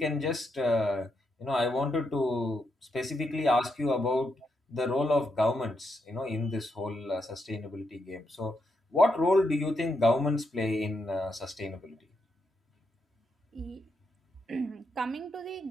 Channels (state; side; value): normal; both; correlation 0.81